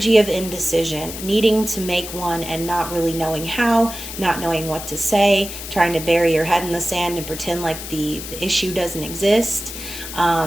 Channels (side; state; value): left; noise; hiss, 9 dB below the sound